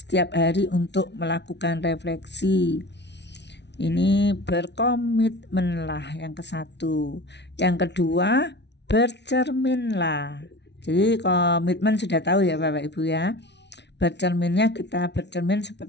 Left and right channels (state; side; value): late; right; 0.50 ms